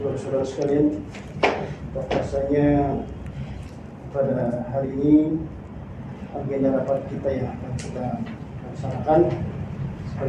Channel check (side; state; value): both; identical; correlation 1.00